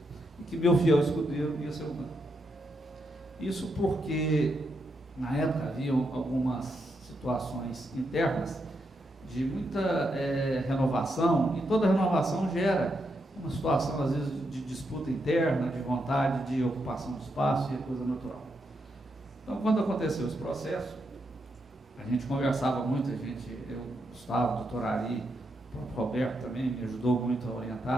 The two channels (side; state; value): both; normal; correlation 0.82